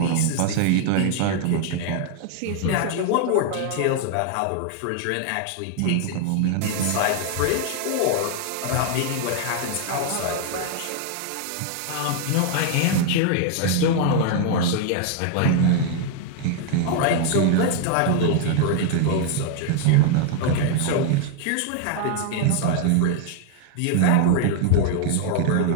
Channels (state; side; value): different; both; correlation 0.00